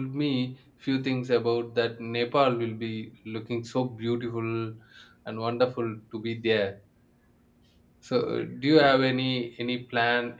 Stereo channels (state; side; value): identical; both; correlation 1.00